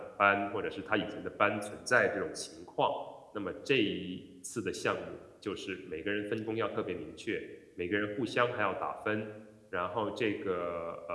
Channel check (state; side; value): identical; both; correlation 1.00